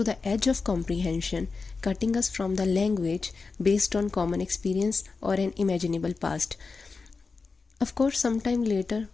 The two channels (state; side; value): quieter; right; 4.4 dB